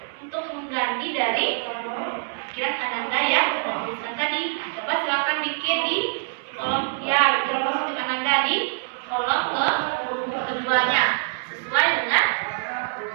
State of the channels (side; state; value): left; silent; digital silence